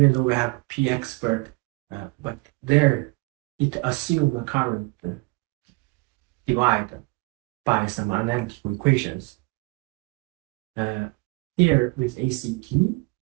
though we have P expert, but there it assumes the current divided by some analytical equations. Here with ACT,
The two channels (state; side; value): quieter; left; 27.3 dB